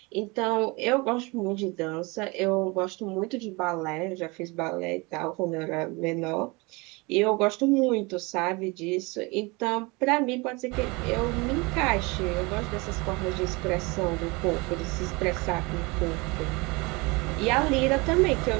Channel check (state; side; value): quieter; left; 26.3 dB